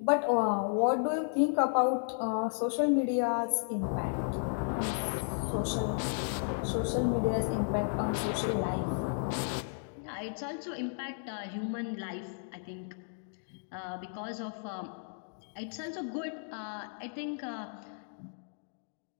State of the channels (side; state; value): right; silent; digital silence